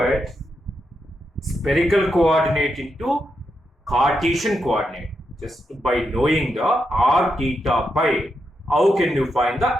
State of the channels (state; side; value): normal; both; correlation 0.84